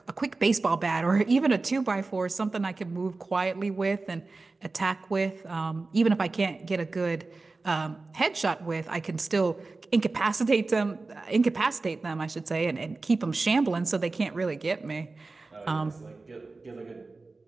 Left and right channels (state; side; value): quieter; left; 3.6 dB